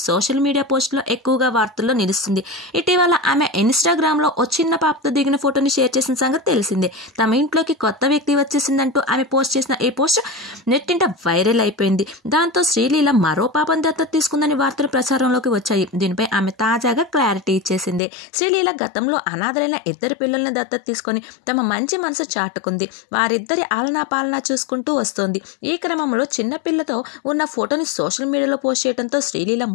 సోషల్ మీడియా పోస్టులో ఎక్కువగా వార్తల్లో నిలుస్తుంది. ఇటీవల ఆమె ఇన్స్టాగ్రామ్ లో ఓ చిన్న పాపతో దిగిన ఫోటోని షేర్ చేసిన సంగతి తెలిసిందే. తమ ఇంట్లోకి కొత్త వ్యక్తి వచ్చేసిందంటూ ఆమె పోస్ట్ చేసిన ఈ పోస్ట్ నెట్టింట వైరల్ అయిపోయింది. దాంతో శ్రీలీల మరో పాపను దత్తత తీసుకుందని వార్తలు ప్రచారంలోకి వచ్చాయి. దీనిపై ఆమె తాజాగా క్లారిటీ ఇచ్చేసింది. శ్రీలీల గతంలో అనాథలైన 2 పిల్లల్ని దత్తత తీసుకొని తమ మంచి మనసు చాటుకుంది. వారిద్దరి ఆలనా పాలనా చూసుకుంటూ వస్తోంది. ఈ క్రమంలో చిన్న పిల్లతో ఉన్న ఫోటోని సోషల్ మీడియాలో పోస్ట్ చేయడంతో శ్రీలీల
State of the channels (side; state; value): right; drops out; at 18.0 s